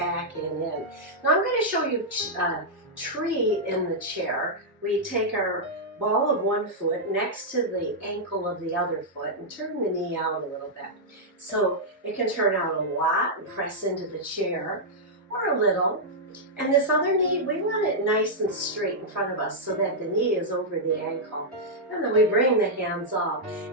and in. Now I'm going to show you a tree in the chair. We take our ball of one foot next to the ankle of the other foot and turn the knee out a little bit. So it can turn out a lot and press into the chair, or a little. And this other knee, we want it nice and straight in front of us so that the knee is over the ankle. And then we bring the hands up.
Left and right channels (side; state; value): both; normal; correlation -0.07